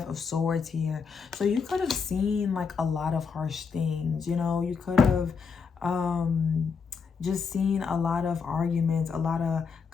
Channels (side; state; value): right; quieter; 5.6 dB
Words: of Swords here. So you could have seen like a lot of harsh things, you know. You could have just seen a lot of arguments, a lot of